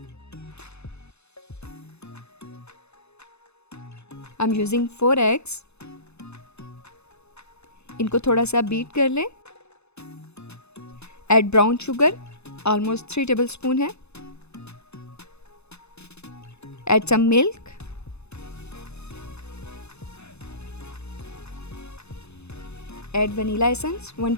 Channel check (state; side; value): late; right; 0.80 ms